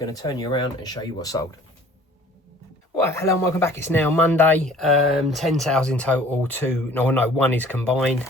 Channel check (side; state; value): both; normal; correlation 0.51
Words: to turn you around and show you what's sold. Right, hello and welcome back. It's now Monday. 10 sales in total. One is combined.